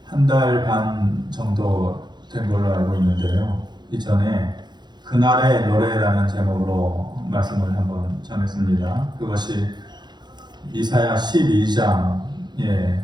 한 달 반 정도 된 걸로 알고 있는데요. 이전에 그날의 노래라는 제목으로 말씀을 한번 전했습니다. 그것이 이사야 12장의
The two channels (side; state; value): left; late; 0.21 ms